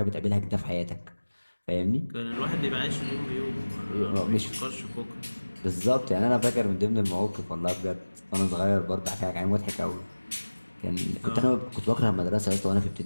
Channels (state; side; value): inverted; both; correlation -1.00